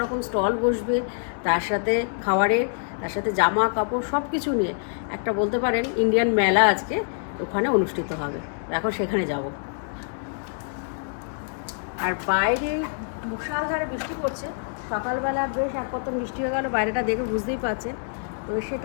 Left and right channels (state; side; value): silent; right; digital silence